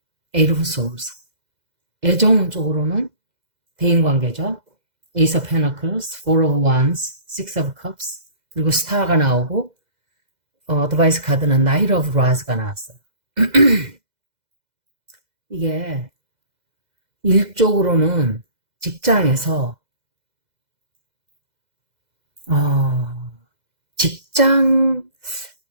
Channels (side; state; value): left; late; 2.0 ms